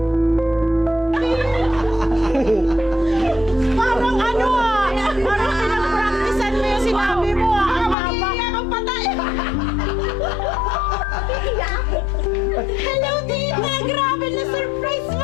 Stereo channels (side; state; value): right; drops out; at 8.0 s